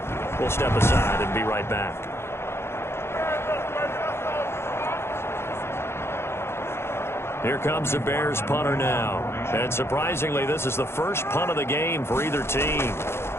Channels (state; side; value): late; right; 0.12 ms